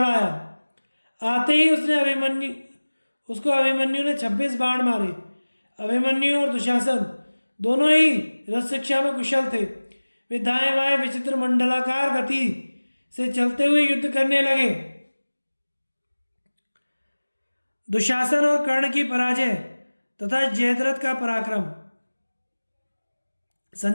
आया। आते ही उसको अभिमन्यु ने 26 बाण मारे। अभिमन्यु और दुशासन दोनों ही रथ शिक्षा में कुशल थे। वे दाएं बाएं विचित्र मंडलाकार गति से चलते हुए युद्ध करने लगे। दुशासन और कर्ण की पराजय तथा जयद्रथ का पराक्रम।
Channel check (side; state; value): both; inverted; correlation -1.00